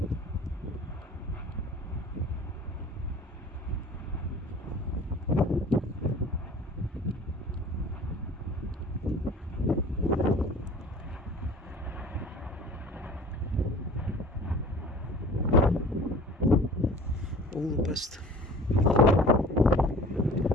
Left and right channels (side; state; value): both; normal; correlation 0.44